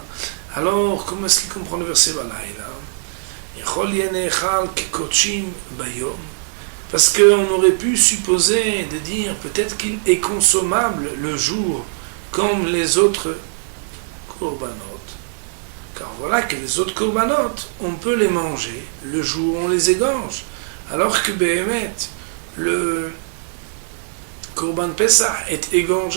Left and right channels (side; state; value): left; silent; 65 dB below the other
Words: Alors, comment est-ce qu'il comprend le verset balayla? Parce qu'on aurait pu supposer de dire peut-être qu'il est consommable le jour comme les autres korbanot. Car voilà que les autres korbanot, on peut les manger le jour où on les égorge. Alors que Behemet, le Korban Pessah est